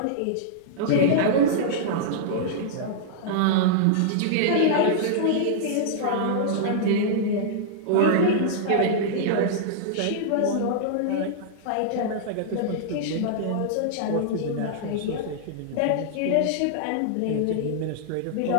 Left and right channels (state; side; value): different; both; correlation -0.02